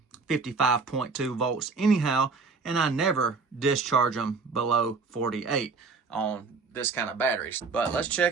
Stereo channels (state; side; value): quieter; left; 4.4 dB